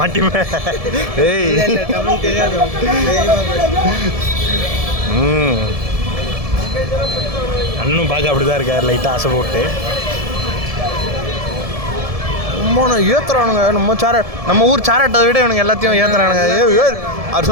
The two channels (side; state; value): left; late; 1.7 ms